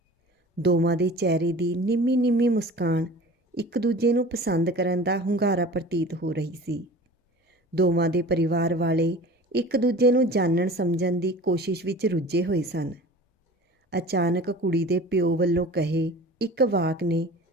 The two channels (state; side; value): normal; both; correlation 0.40